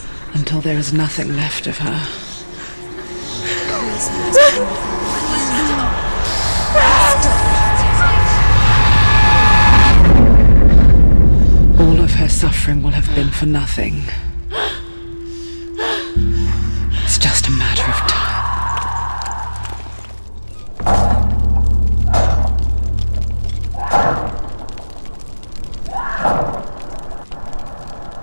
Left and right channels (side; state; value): both; inverted; correlation -1.00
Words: until there is nothing left of her. All of her suffering will have been for nothing. It's just a matter of time.